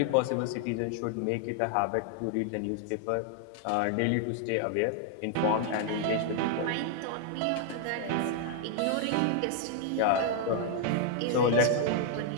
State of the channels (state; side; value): different; both; correlation 0.00